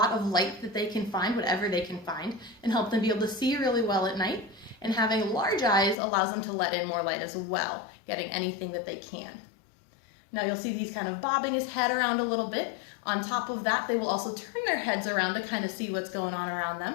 of light that they can find, whatever they can find, and help them be able to see really well at night. And having large eyes allows them to let in more light as well, getting anything that they can. Now you'll see these kind of bobbing his head around a little bit. On top of that, they will also turn their heads around to kind of see what's going on around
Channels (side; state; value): right; drops out; at 6.0 s